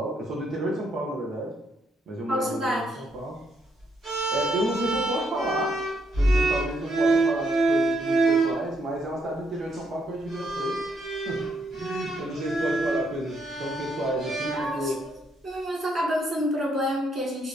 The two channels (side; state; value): both; normal; correlation 0.74